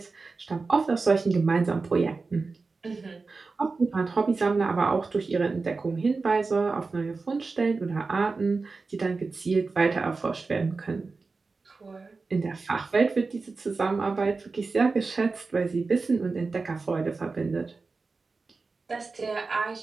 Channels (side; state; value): left; quieter; 4.1 dB